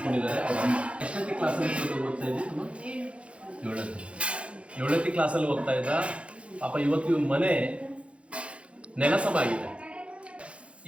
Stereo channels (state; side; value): late; left; 0.061 ms